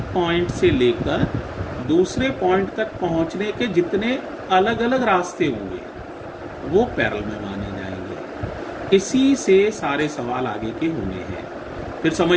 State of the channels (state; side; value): identical; both; correlation 1.00